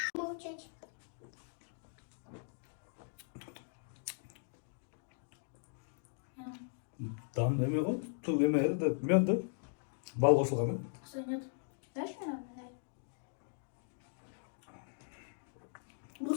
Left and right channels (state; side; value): silent; right; digital silence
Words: Молчать. Там эме го, туг эме да, мёд да. Бал кошулган да. Что нет? Дашь мне? Дай.